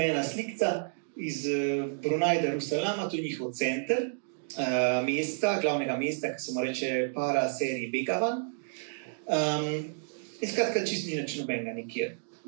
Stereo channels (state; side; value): silent; left; digital silence